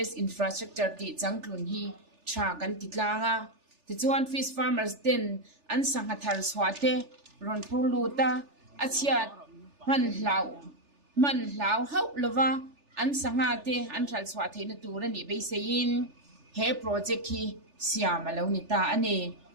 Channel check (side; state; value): left; late; 3.4 ms